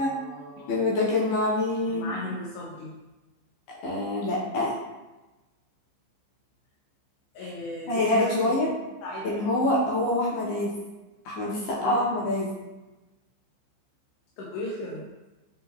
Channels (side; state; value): right; late; 15 ms